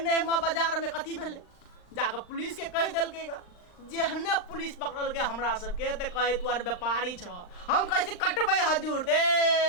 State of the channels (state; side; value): late; right; 39 ms